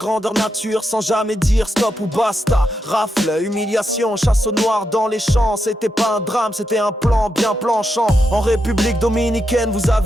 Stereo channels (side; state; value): both; normal; correlation 0.84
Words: nature sans jamais dire stop ou basta. Rafle, humiliation, chasse au noir dans les champs. C'était pas un drame, c'était un plan bien planchant. En République dominicaine, vous